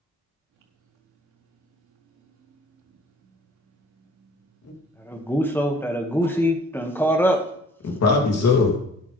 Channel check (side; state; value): both; normal; correlation 0.52